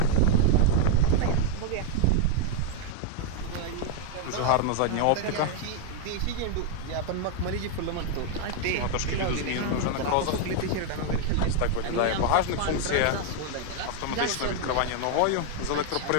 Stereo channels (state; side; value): different; both; correlation 0.00